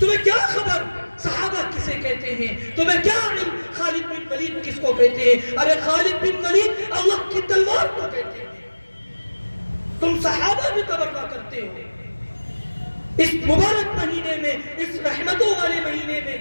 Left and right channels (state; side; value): inverted; both; correlation -1.00